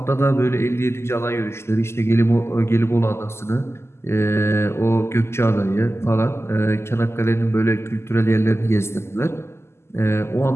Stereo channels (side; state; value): right; late; 0.12 ms